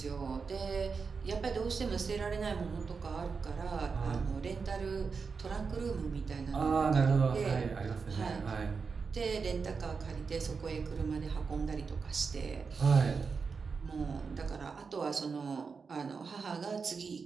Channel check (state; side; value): quieter; left; 5.1 dB